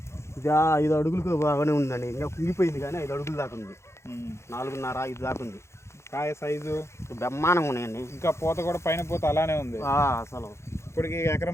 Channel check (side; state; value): right; late; 0.13 ms